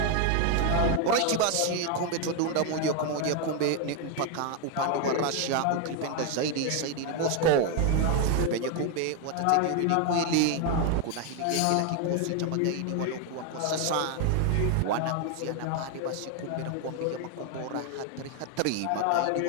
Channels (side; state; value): both; different; correlation 0.01